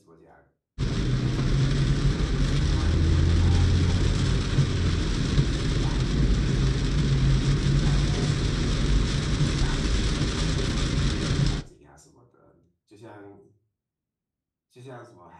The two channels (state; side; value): identical; both; correlation 1.00